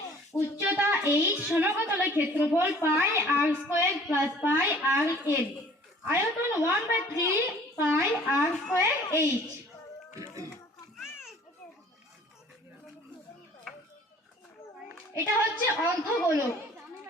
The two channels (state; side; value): normal; both; correlation 0.52